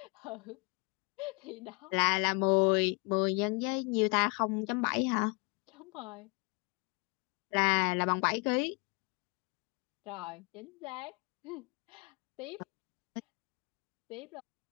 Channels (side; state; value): right; quieter; 31.1 dB